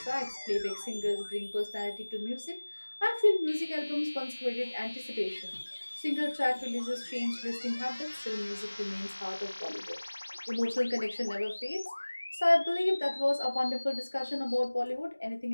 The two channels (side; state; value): both; inverted; correlation -1.00